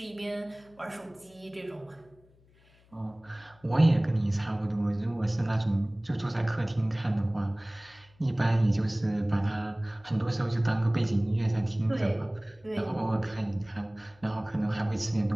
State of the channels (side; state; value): left; noise; hum, 30 dB below the sound